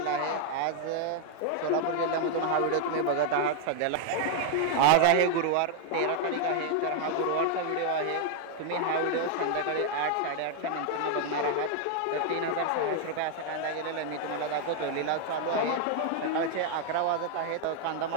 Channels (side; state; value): both; different; correlation 0.00